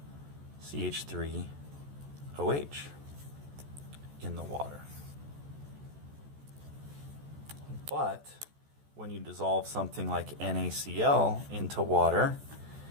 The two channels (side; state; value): left; late; 14 ms